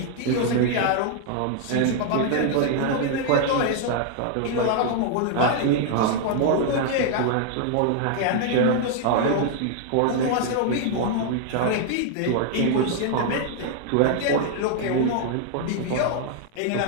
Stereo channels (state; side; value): different; both; correlation 0.00